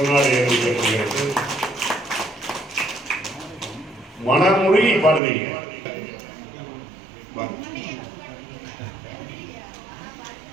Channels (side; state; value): left; drops out; at 5.2 s